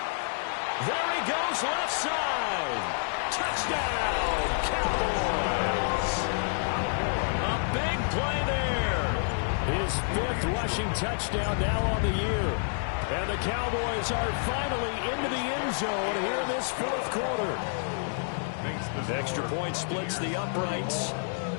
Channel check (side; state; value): right; silent; digital silence